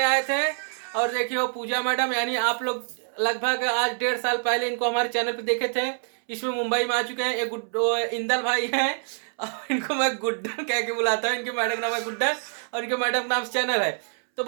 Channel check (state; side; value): silent; left; 61 dB below the other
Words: आए थे। और देखिए वो पूजा मैडम, यानी आप लोग लगभग आज 1.5 साल पहले इनको हमारे चैनल पे देखे थे। इसमें मुंबई में आ चुके हैं। एक इंदल भाई हैं और इनको मैं गुड्डन कह के बुलाता हूँ। इनके मैडम का नाम है गुड्डन और इनके मैडम का नाम चैनल है। तो